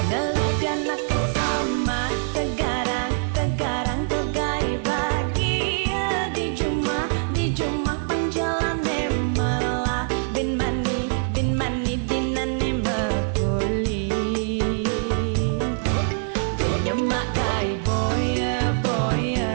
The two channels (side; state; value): left; silent; 61 dB below the other